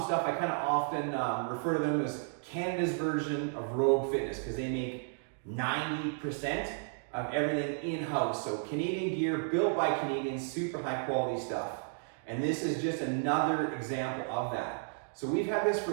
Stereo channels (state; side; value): silent; left; digital silence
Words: stuff. I kind of often refer to them as Canada's version of Rogue Fitness because they make 90% of everything in-house. So Canadian gear, built by Canadians, super high quality stuff. And this is just another example of that. So we've had this for